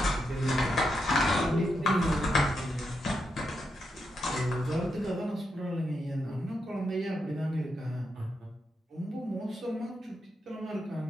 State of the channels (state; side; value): normal; both; correlation 0.83